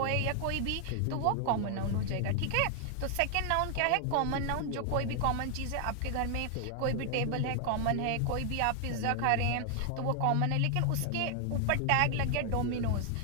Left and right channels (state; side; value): different; both; correlation 0.00